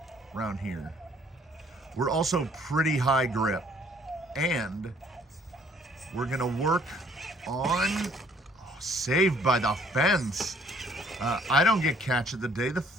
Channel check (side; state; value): both; normal; correlation 0.61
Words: around here. We're also pretty high grip, and we're gonna work on, saved by the fence. I don't get catch of the day, the